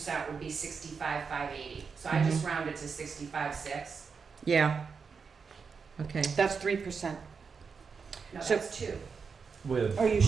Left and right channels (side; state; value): left; quieter; 5.5 dB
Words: would be 65,580. So I just rounded to 65,6. yeah. Okay. That's 3%. No, So- that's 2. With Are you